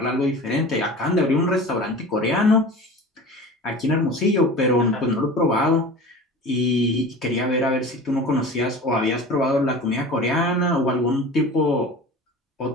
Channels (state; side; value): normal; both; correlation 0.36